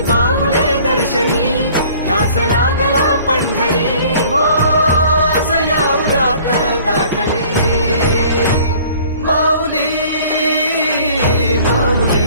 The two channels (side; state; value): both; inverted; correlation -0.52